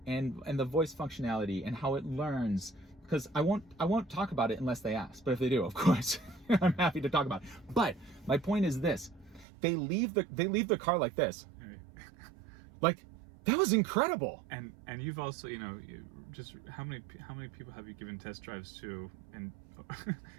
and the voice functionality, and how it learns, because I won't talk about it unless they ask. But if they do, of course, I'm happy to talk about it. But my point is this: they leave the car like this, like that was incredible. And you've also just how many people have you given test drives to and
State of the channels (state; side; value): drops out; left; at 9.5 s